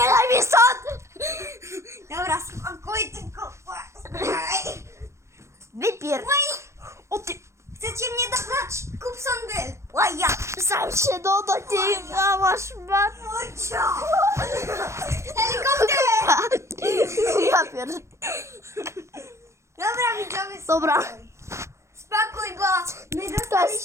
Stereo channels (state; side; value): late; left; 0.14 ms